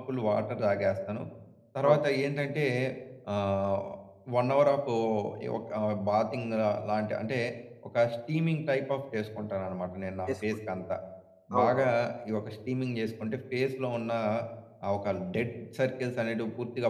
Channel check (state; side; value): identical; both; correlation 1.00